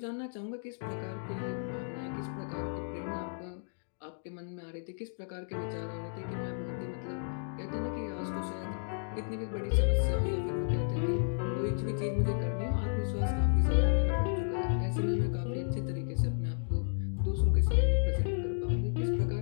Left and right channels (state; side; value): silent; right; digital silence